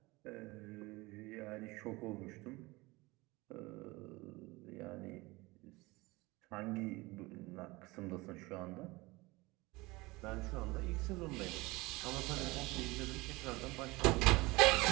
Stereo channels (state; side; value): quieter; left; 22.4 dB